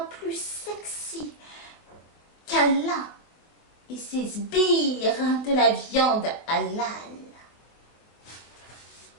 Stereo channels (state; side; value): late; right; 24 ms